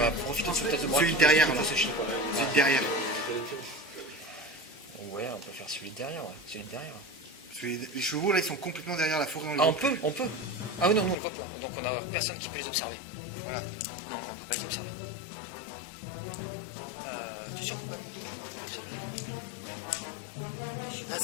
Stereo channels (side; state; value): right; drops out; at 11.2 s